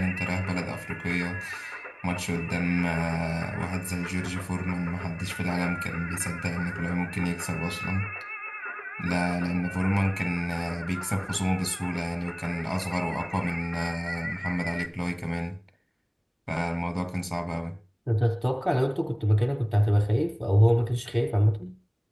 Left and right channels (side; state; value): both; identical; correlation 1.00